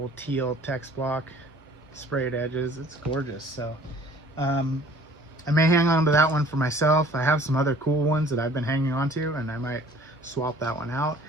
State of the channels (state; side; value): normal; both; correlation 0.52